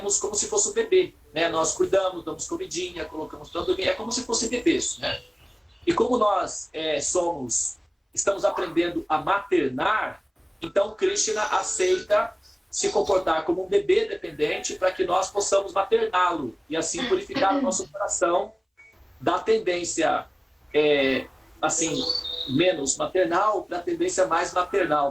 como se fosse um bebê, né? Nós cuidamos, damos comidinha, colocamos para dormir, é como se fosse bebês, né? E como nós estamos aprendendo a maternar, Então Krishna aceita se comportar como um bebê dependente para que nós possamos materná-lo e assim purificar o nosso coração da tendência assim, menos maternal para a tendência mais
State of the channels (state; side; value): identical; both; correlation 1.00